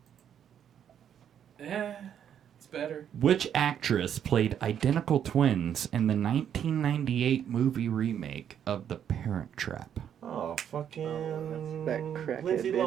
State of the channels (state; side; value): quieter; left; 9.1 dB